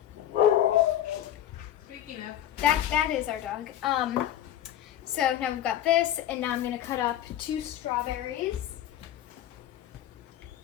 Speaking of, That is our dog. So now we've got this, and now I'm gonna cut up 2 strawberries.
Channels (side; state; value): right; quieter; 11.6 dB